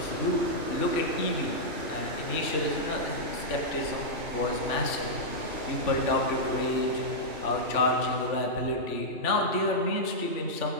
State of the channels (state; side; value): late; right; 3.4 ms